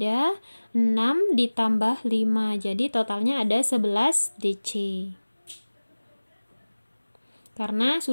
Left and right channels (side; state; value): both; inverted; correlation -1.00